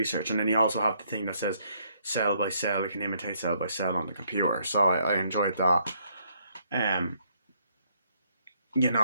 And then you also have the thing that says cell by cell. You can imitate cell by cell on the computer. So I enjoyed that. You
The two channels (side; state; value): both; inverted; correlation -0.70